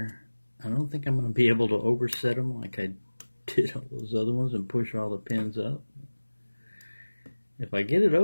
I don't think I'm going to be able to overset him like I did all those other ones and push all the pins up. If I get it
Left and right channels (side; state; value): both; inverted; correlation -1.00